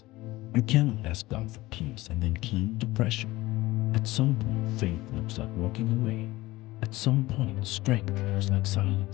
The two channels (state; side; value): quieter; right; 18.8 dB